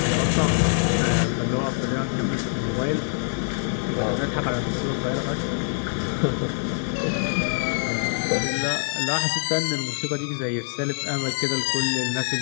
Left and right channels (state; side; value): silent; right; digital silence